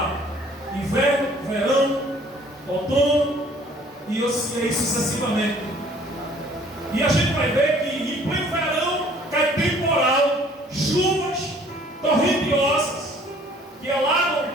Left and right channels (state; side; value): normal; both; correlation 0.56